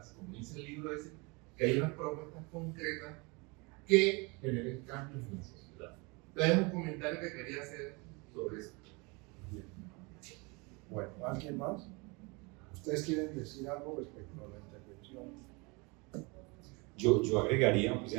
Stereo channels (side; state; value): left; quieter; 28.2 dB